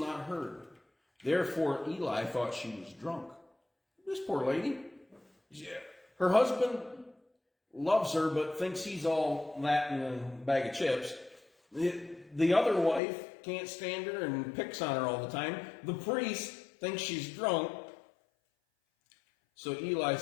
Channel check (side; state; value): right; drops out; at 13.0 s